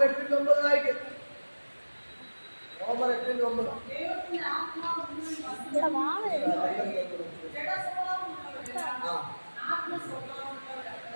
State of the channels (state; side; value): inverted; both; correlation -1.00